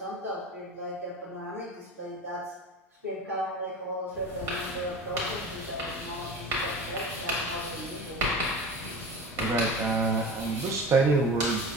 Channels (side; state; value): both; normal; correlation 0.34